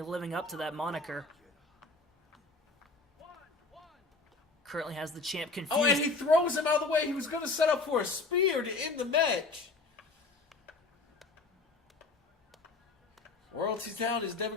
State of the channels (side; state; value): right; quieter; 3.7 dB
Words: living up to that moniker. Currently has the champ confused. Oh, and he throws him out of the way. He was going to set up for a spear to end the match. Royalty's down. Is Devin